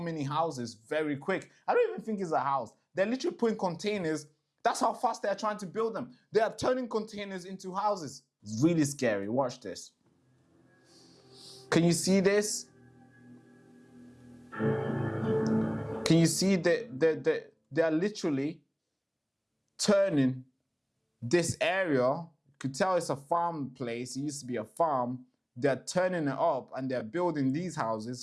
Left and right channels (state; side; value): identical; both; correlation 1.00